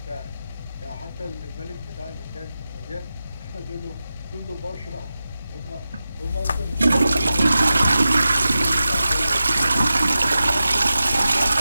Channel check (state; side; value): inverted; both; correlation -0.93